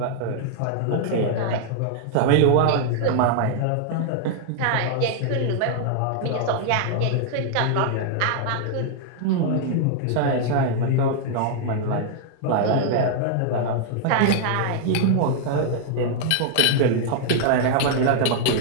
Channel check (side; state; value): both; different; correlation 0.00